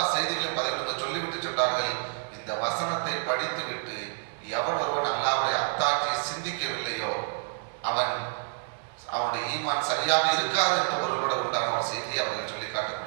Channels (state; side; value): silent; left; digital silence